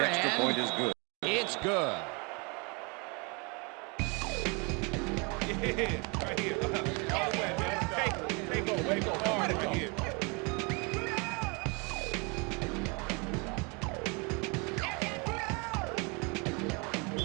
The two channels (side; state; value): left; quieter; 31.0 dB